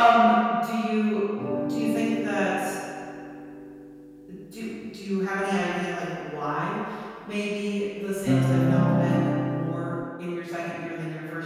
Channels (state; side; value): identical; both; correlation 1.00